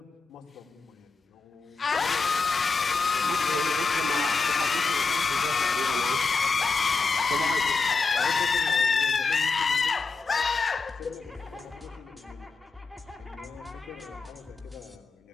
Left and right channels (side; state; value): right; quieter; 4.4 dB